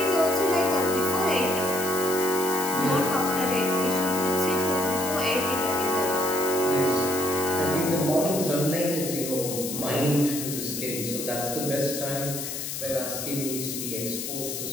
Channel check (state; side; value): noise; left; hiss, 5 dB below the sound